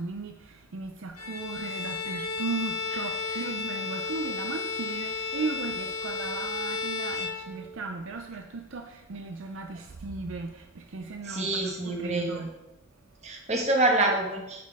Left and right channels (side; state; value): both; normal; correlation 0.10